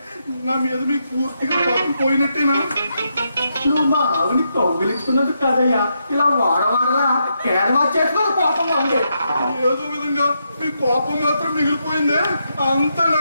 నా మీద మీకు పూర్తిగా కోపం పోయినట్టేనా? నువ్వు మా ఆవిని కౌగిలించుకున్నందుకు కాదయ్యా, ఇలా వాడవాడలా కేరళ చేసుకున్న కోపంగా ఉంది. ఏదో విధంగా మీ కోపం మాత్రం మిగిలిపోయిందే, అంత నా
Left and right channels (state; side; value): inverted; both; correlation -0.82